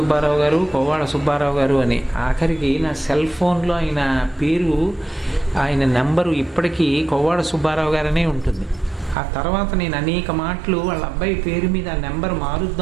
గారు అని. ఆఖరికి నా సెల్ ఫోన్లో ఆయన పేరు, ఆయన నెంబరు ఇప్పటికీ కొవ్వాడ సుబ్బారావు గారనే ఉంటుంది. ఆ తర్వాత నేను అనేక మాటలు వాళ్ళ అబ్బాయి పేరు మీద ఆ నెంబర్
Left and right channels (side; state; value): left; drops out; at 9.2 s